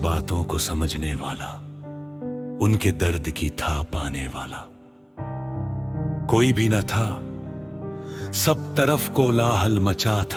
को समझने वाला, उनके दर्द की था पाने वाला कोई भी न था। सब तरफ कोलाहल मचा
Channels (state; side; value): identical; both; correlation 1.00